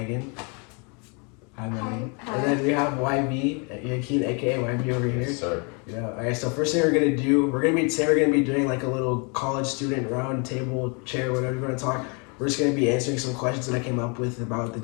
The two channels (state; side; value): quieter; right; 34.1 dB